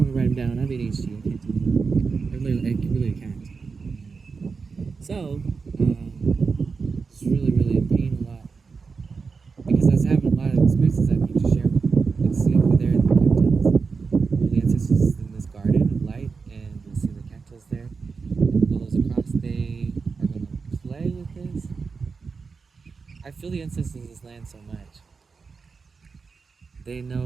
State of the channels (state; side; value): quieter; left; 4.9 dB